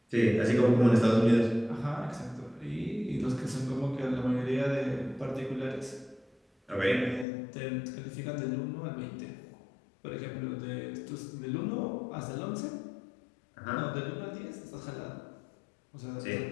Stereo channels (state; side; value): drops out; right; at 7.2 s